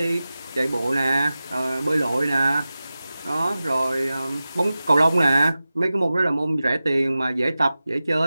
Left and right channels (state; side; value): inverted; both; correlation -0.96